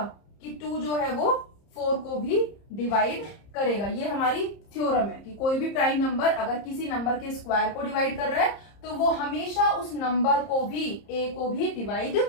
कि 2 जो है वो 4 को भी डिवाइड करेगा। ये हमारी थ्योरम है कि कोई भी प्राइम नंबर अगर किसी नंबर के स्क्वायर को डिवाइड कर रहा है तो वो हमेशा उस नंबर को भी, A को भी डिवाइड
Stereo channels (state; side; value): late; right; 30 ms